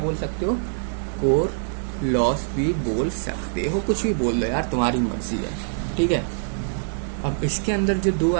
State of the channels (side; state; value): left; silent; digital silence